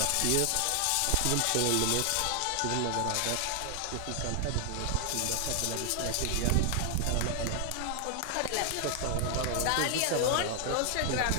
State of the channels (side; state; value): both; different; correlation 0.00